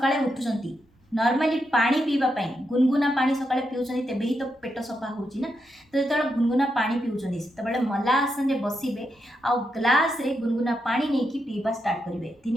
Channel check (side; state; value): both; normal; correlation 0.84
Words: उठुचंती नॉर्मली पानी पीवा पाई गुनगुना पानी सकाळे पिउछन्ती तेबे ही तो पेट सफा होउची ना। तो जेतबेले गुनगुना पानी पिउछन्ती सेतबेले मला आसन रे बसिबे आ ग्लास रे गुनगुना पानी नेकी पीवा स्टार्ट करिवे।